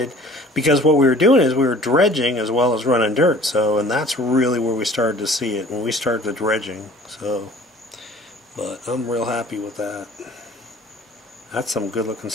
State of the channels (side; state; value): both; normal; correlation 0.49